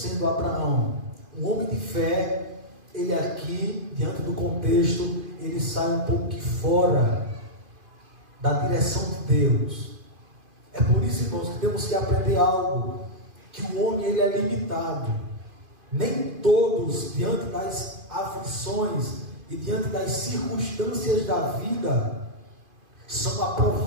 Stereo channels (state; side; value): late; left; 2.5 ms